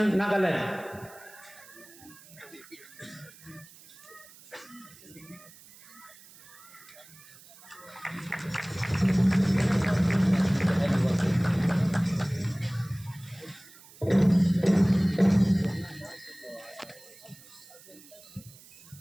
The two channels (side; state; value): right; noise; hiss, 22 dB below the sound